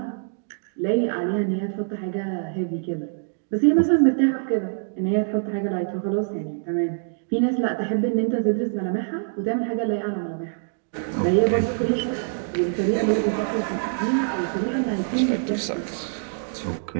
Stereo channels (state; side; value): silent; left; digital silence